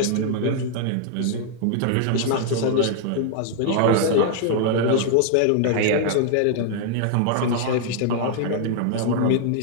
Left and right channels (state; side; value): different; both; correlation 0.00